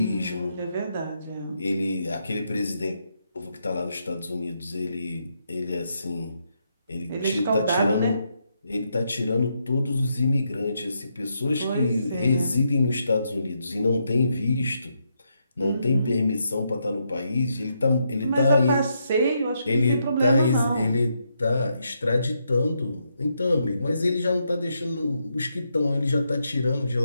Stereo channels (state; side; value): inverted; both; correlation -0.80